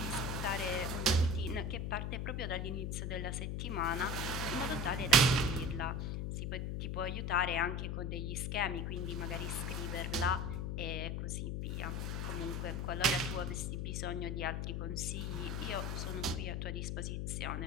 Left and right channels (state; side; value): noise; left; hum, 1 dB below the sound